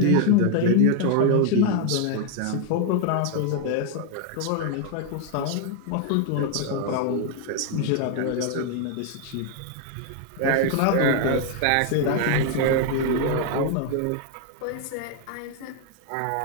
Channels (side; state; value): both; different; correlation 0.00